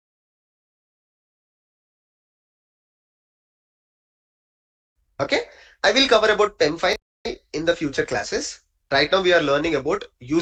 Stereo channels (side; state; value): both; identical; correlation 1.00